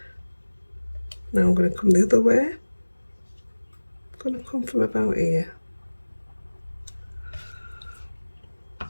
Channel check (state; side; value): inverted; both; correlation -1.00